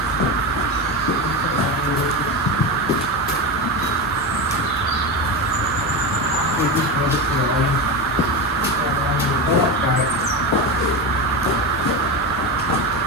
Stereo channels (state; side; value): normal; both; correlation 0.18